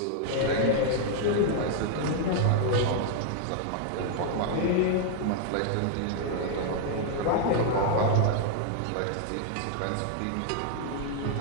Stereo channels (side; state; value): both; different; correlation 0.00